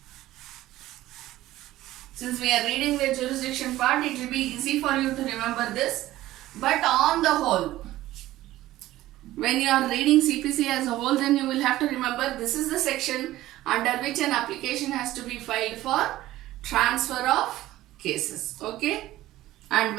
Since we are reading the jurisdiction part, it will be easy for you to remember this. But on the whole, when you are reading CPC as a whole, then you will have to remember this is the section under which an application has to be filed for transfer of cases, okay, and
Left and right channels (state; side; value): quieter; left; 15.6 dB